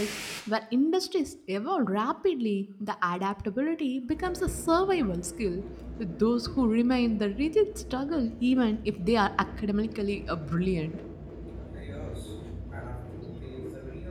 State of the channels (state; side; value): identical; both; correlation 1.00